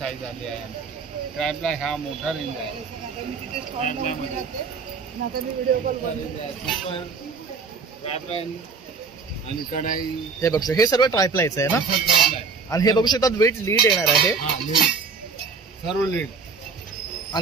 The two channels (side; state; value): left; quieter; 4.9 dB